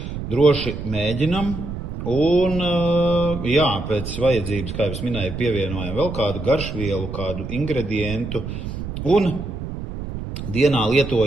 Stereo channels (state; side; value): noise; right; rumble, 7 dB below the sound